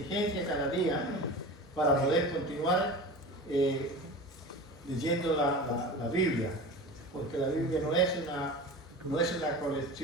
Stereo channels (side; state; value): both; normal; correlation 0.33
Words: cada día para poder continuar leyendo la Biblia, porque la Biblia no es una